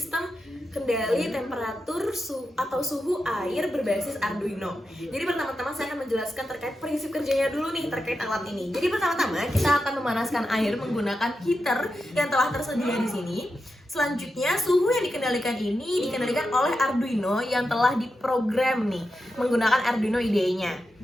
kendali temperatur atau suhu air berbasis Arduino. Jadi pertama-tama saya akan menjelaskan terkait prinsip kerjanya dulu nih terkait alat ini. Jadi pertama-tama kita akan memanaskan air menggunakan heater yang telah tersedia di sini. Selanjutnya, suhu yang dikendalikan ini dikendalikan oleh Arduino yang telah diprogram nih menggunakan Arduino IDE-nya.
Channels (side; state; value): both; normal; correlation 0.89